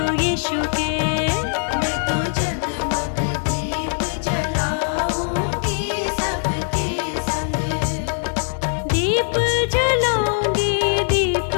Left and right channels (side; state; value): right; silent; digital silence